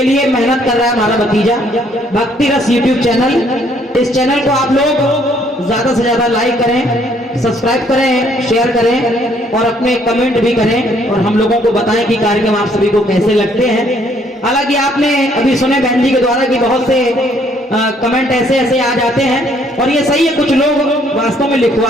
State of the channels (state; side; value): normal; both; correlation 0.65